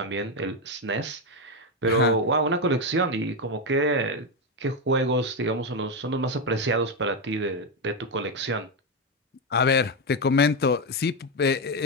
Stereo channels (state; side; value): normal; both; correlation 0.08